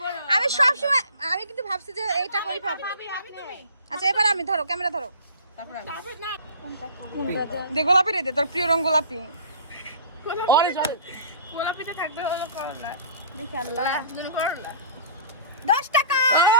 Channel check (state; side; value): inverted; both; correlation -0.44